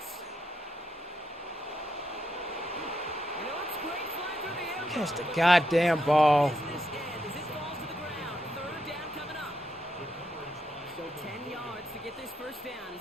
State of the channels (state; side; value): normal; both; correlation 0.80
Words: You know, it's great flying through the air. Catch the goddamn ball. Business end as it falls to the ground. 3rd down coming up. So 10 yards to get this 1st down